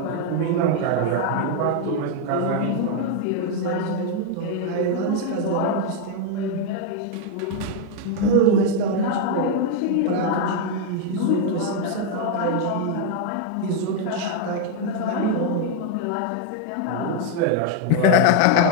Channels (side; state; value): both; different; correlation 0.01